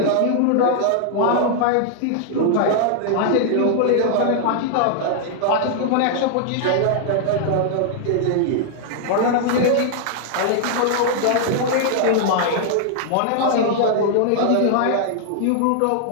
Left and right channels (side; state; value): both; different; correlation 0.00